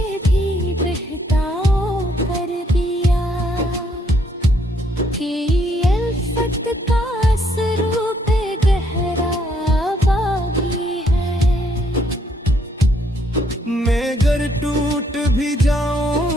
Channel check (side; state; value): both; normal; correlation 0.70